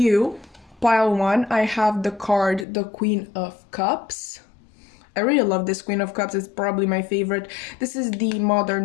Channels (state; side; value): drops out; right; at 2.7 s